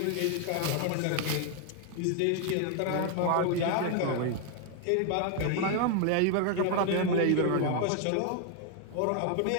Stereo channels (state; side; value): different; both; correlation 0.00